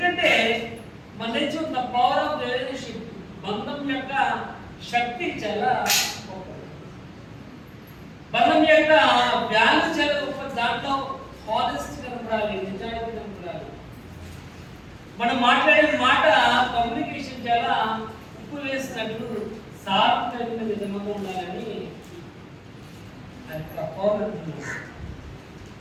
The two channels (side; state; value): both; identical; correlation 1.00